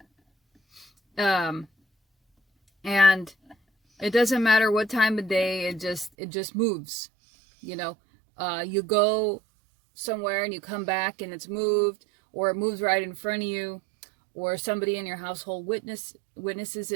And it doesn't matter what time of day, it just moves. You know, you go somewhere and you come back and it's moved, or it moves right in front of you, or somebody in your household witnesses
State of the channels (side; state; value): left; drops out; at 6.1 s